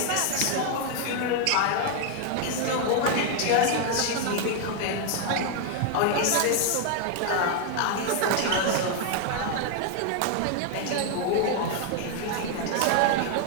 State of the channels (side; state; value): both; different; correlation 0.00